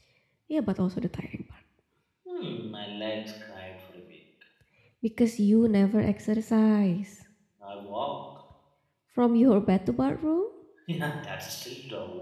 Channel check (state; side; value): identical; both; correlation 1.00